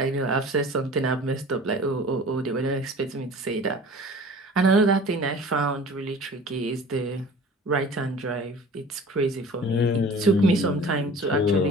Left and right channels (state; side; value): normal; both; correlation 0.44